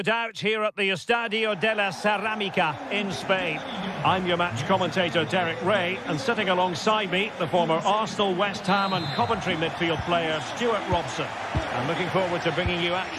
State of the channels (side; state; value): both; identical; correlation 1.00